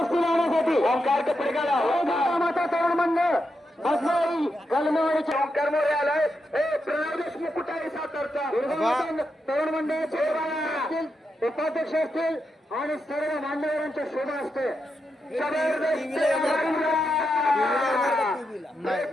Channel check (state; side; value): normal; both; correlation 0.85